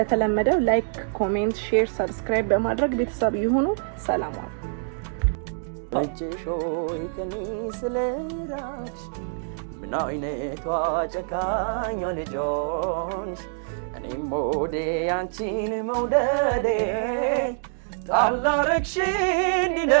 ላይክ፣ ኮሜንት፣ ሼር፣ ሰብስክራይብ በማድረግ ቤተሰብ ይሁኑ። ሰላም ዋሉ። እጅሾይ ከኒ ስለራሽ ምን አይነቷ ጨካኝ ልጆንሽ እኔም ሞዴ አንቺን መውደዴ ጣላረክሽ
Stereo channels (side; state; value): left; silent; digital silence